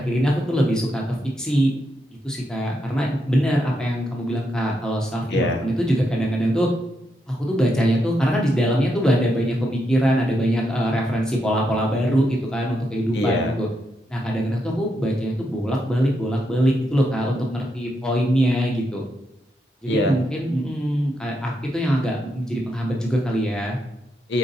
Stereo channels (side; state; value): both; normal; correlation 0.82